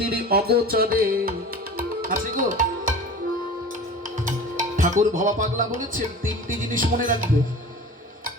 অগোচরে আছে গো। ঠাকুর ভবা পাগলা বলেছেন 3টি জিনিস মনে রাখবে।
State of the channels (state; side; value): normal; both; correlation 0.37